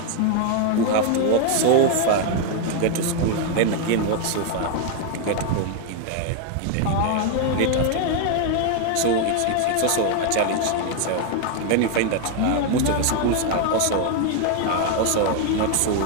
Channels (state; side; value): different; both; correlation 0.01